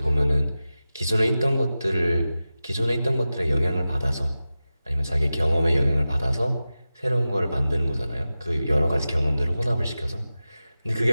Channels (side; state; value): both; inverted; correlation -0.94